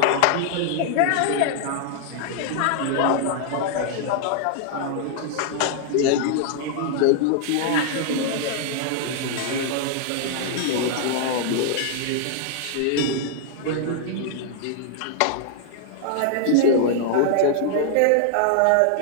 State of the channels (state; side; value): different; both; correlation 0.00